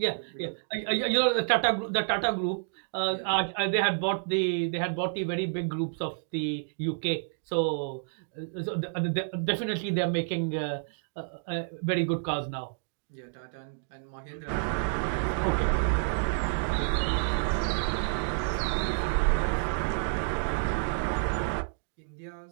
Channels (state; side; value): silent; left; digital silence